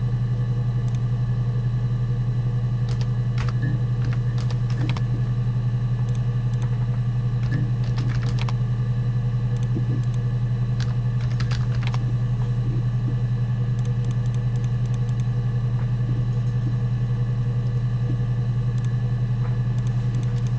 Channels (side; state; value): both; identical; correlation 1.00